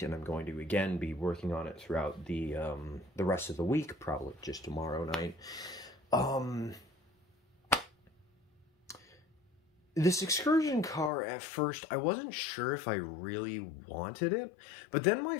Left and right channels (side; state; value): right; drops out; at 11.1 s